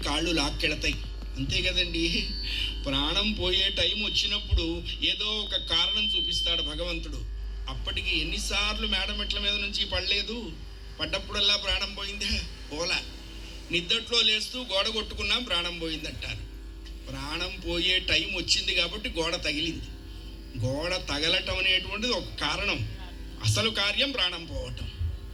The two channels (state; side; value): identical; both; correlation 1.00